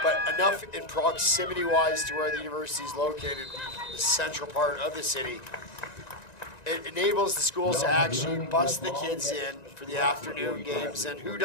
but enough in proximity-wise to where the university is located in the central part of the city. It enables the schools to actually bus the kids in for the afternoon games, and who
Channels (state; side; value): late; right; 1.9 ms